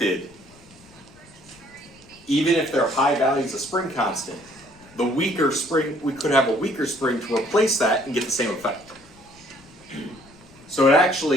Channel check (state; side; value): noise; left; rumble, 26 dB below the sound